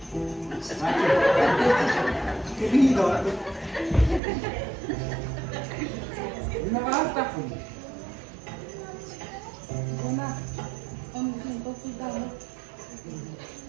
querido. Una basta. Ona, onun için dokudan.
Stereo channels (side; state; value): left; drops out; at 4.2 s